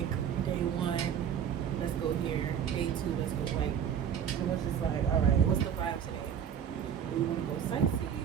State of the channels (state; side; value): quieter; left; 8.5 dB